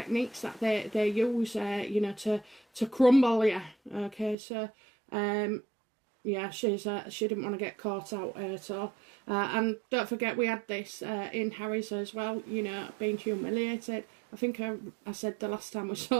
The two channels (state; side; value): drops out; left; at 4.4 s